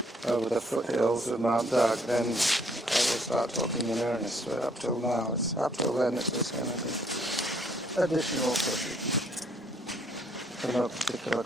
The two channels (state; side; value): normal; both; correlation 0.65